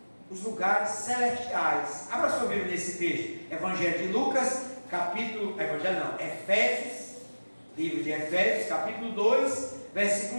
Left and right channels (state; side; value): inverted; both; correlation -1.00